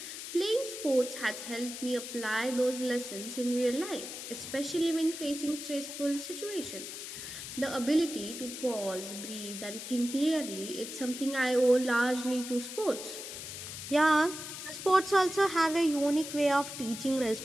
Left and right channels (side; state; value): left; noise; hiss, 9 dB below the sound